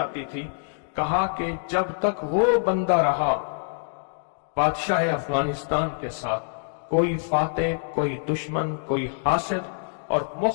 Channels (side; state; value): right; silent; digital silence